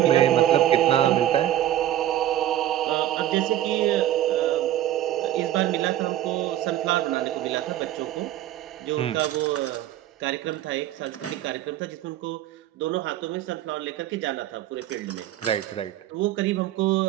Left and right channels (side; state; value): left; quieter; 12.7 dB